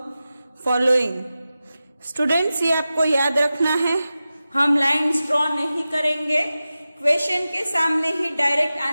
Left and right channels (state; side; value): inverted; both; correlation -0.94